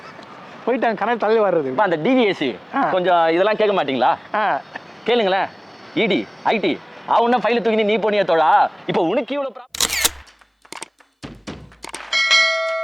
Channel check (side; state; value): both; identical; correlation 1.00